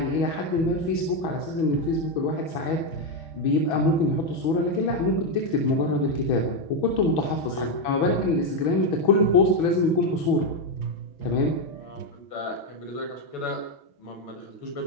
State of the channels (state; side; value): late; right; 6.2 ms